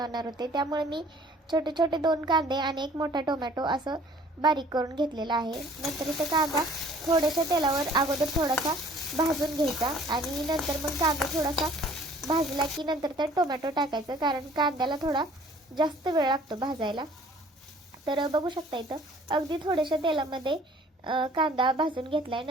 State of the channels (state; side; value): normal; both; correlation 0.53